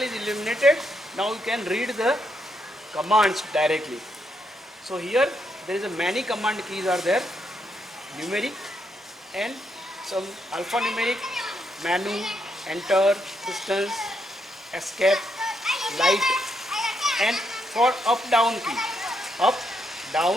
illuminated. Now you can read the commands directly. So here there is a many command keys are there, numeric and some alphanumeric, menu, enter, distance, escape, light, and for up down key, up,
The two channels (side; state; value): both; normal; correlation 0.78